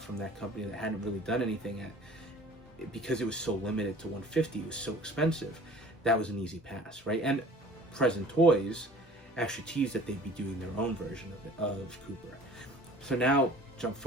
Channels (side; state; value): both; normal; correlation 0.47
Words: that company that hadn't really done anything because it was so limited to 150, it was so expensive, that was an easy pass, right? And Present Toys actually teased that they'd be doing their own version of Cooper. So now, jump